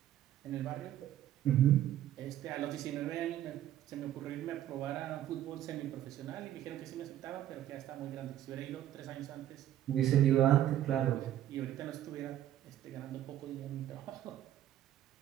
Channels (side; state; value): left; quieter; 12.2 dB